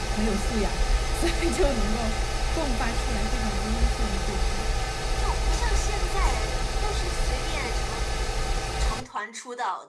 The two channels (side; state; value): both; identical; correlation 1.00